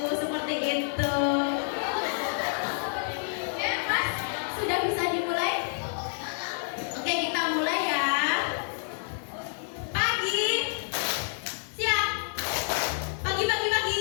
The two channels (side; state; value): right; silent; 59 dB below the other